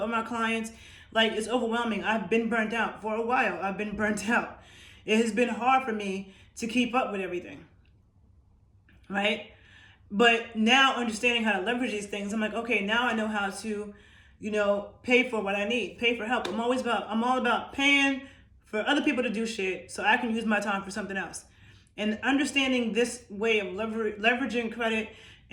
clients. Like, it's overwhelming. I've been burnt out for a while. I've been burnt out. It has been hard for me to keep up with everything, right? But now understanding how to leverage these things, I'm like, okay, now I know how to, pay for what I need, pay for help. I'm all about paying for other people to do shit so I can use my time for something else. And understanding this way of leveraging credit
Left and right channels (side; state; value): both; identical; correlation 1.00